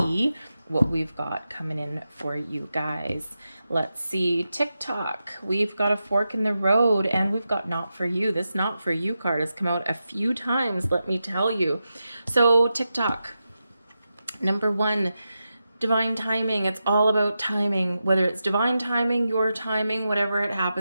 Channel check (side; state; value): both; inverted; correlation -0.90